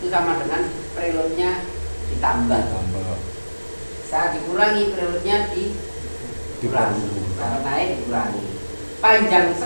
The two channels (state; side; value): inverted; both; correlation -1.00